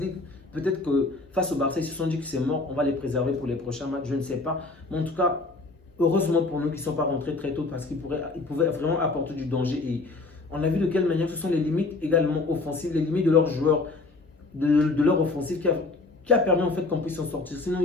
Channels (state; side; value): quieter; right; 3.5 dB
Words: Peut-être que face au Barça, ils se sont dit que c'est mort. On va les préserver pour les prochains matchs. Je ne sais pas. Mais en tout cas, heureusement pour nous qu'ils ne sont pas rentrés très tôt parce qu'ils pouvaient vraiment apporter du danger. Et on a vu de quelle manière ce sont les limites également offensives, les limites de leurs joueurs, de leur offensive qui a permis en fait qu'on puisse s'en sortir. Sinon,